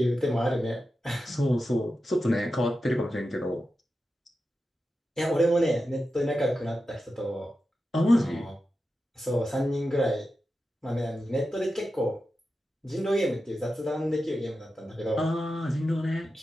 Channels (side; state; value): both; normal; correlation 0.91